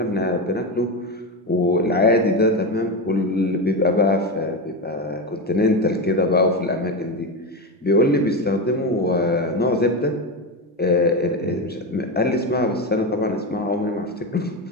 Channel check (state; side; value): normal; both; correlation 0.16